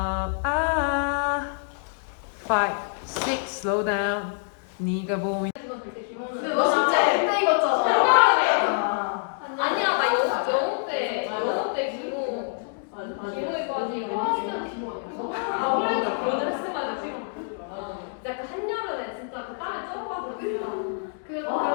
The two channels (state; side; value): silent; right; digital silence